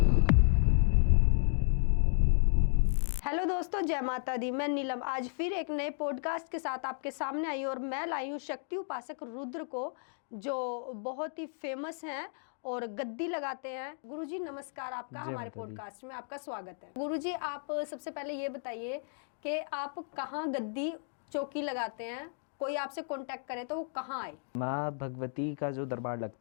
हेलो दोस्तों, जय माता दी। मैं नीलम आज फिर एक नए पॉडकास्ट के साथ आपके सामने आई और मैं लाई हूँ शक्ति उपासक रुद्र को, जो बहुत ही फेमस हैं और गद्दी लगाते हैं। गुरुजी नमस्कार, आपका हमारे पॉडकास्ट में आपका स्वागत है। गुरुजी, आप सबसे पहले ये बताइए कि आप कहाँ गद्दी चौकी लगाते हैं, कोई आपसे कांटेक्ट करे तो वो कहाँ आए? माँ भगवती का जो दरबार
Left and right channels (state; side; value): silent; right; digital silence